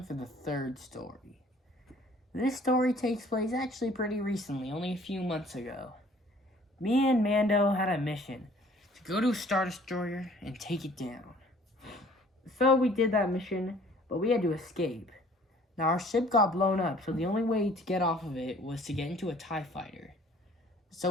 for the third story. This story takes place actually pretty recently, only a few months ago. Me and Mando had a mission to go to a Star Destroyer and take it down. So we did that mission, but we had to escape. Now our ship got blown up, so the only way to get off of it was to get into a TIE fighter.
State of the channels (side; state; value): both; normal; correlation 0.55